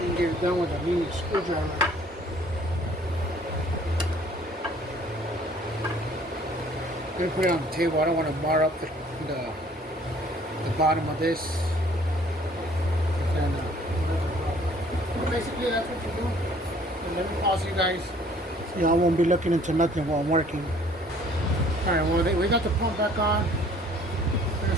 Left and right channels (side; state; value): both; normal; correlation 0.57